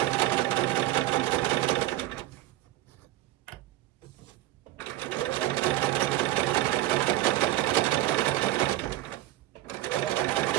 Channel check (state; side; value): quieter; left; 15.4 dB